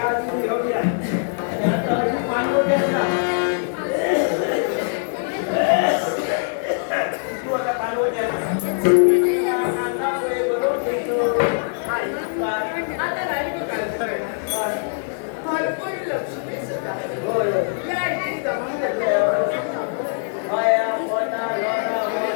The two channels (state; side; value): silent; right; 58 dB below the other